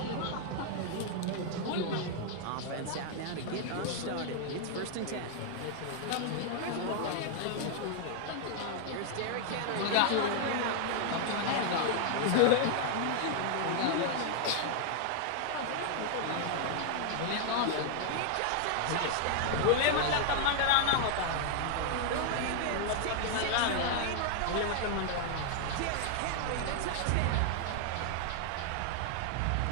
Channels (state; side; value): different; both; correlation 0.00